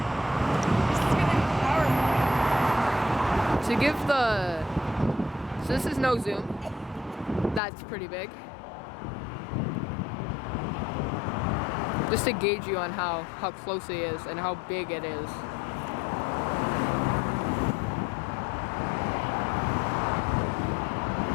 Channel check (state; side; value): drops out; right; at 7.6 s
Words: To give the... So this is no zoom. That's pretty big. Just to gauge you on how close it is and how big it is.